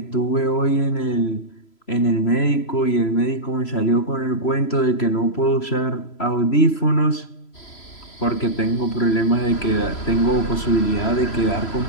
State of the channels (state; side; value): late; right; 3.0 ms